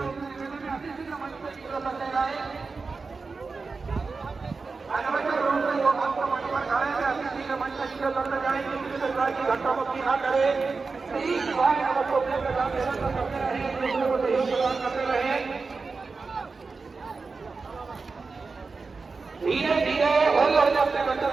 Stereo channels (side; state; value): left; quieter; 4.3 dB